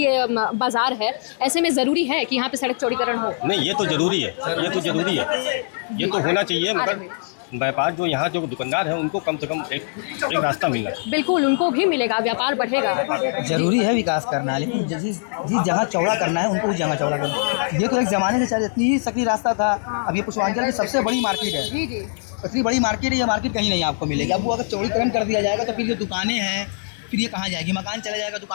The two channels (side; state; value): right; silent; 64 dB below the other